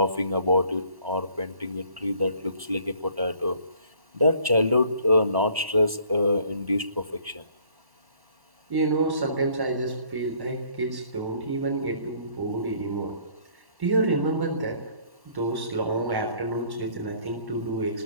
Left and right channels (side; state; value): left; late; 1.1 ms